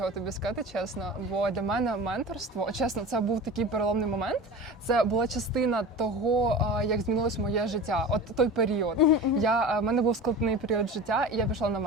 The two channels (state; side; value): normal; both; correlation 0.33